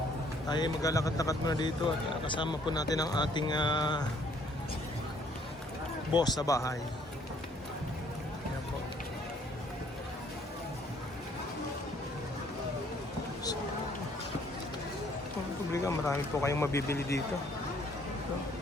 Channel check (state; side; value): normal; both; correlation 0.63